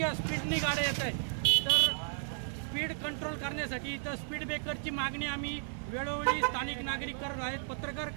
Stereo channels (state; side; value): silent; left; digital silence